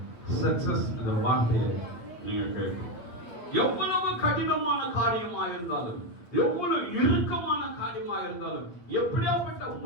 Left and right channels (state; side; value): late; right; 8.9 ms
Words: சக்சஸ் என்ற வார்த்தையை நீங்க கேட்கும். எவ்வளவு கடினமான காரியமா இருந்தாலும், எவ்வளவு இறுக்கமான காரியமா இருந்தாலும், எப்படியாப்பட்ட